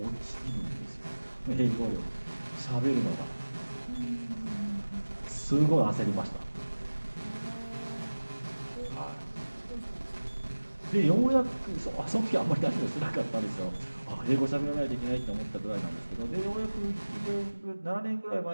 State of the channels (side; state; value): both; inverted; correlation -1.00